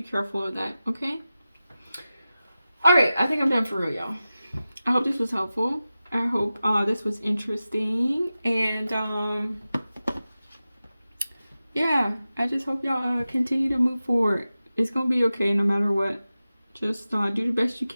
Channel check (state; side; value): inverted; both; correlation -0.94